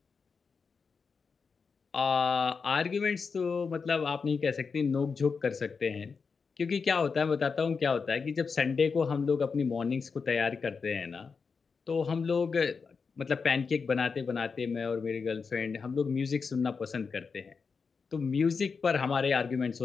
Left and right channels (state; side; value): quieter; right; 5.2 dB